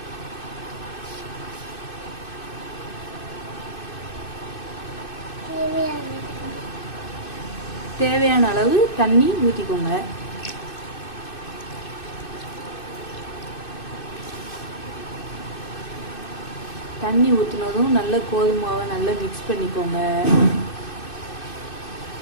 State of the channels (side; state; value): right; late; 2.6 ms